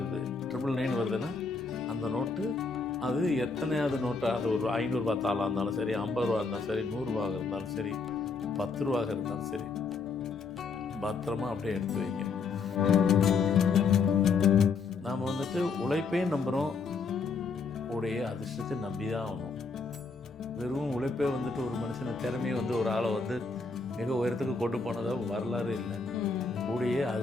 999 வருதுன்னா அந்த நோட்டு அது எத்தனையாவது நோட்டாக, அது ஒரு 500 ரூபா தாளாக இருந்தாலும் சரி, 50 ரூபா இருந்தாலும் சரி, 100 ரூபாக இருந்தாலும் சரி, 10 ரூபாக இருந்தாலும் சரி, பத்திரமா அப்படியே எடுத்து வைங்க. நாம் வந்துட்டு உழைப்பையும் நம்புகிறோம், உடைய அதிர்ஷ்டத்தை நம்பி தான் ஆகணும். வெறும் உழைப்பே வந்துட்டு ஒரு மனுஷனை திறமையை வந்து ஒரு ஆளை வந்து மிக உயரத்துக்கு கொண்டு போனதாக வரலாறு இல்லை. கூடிய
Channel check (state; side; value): quieter; right; 4.5 dB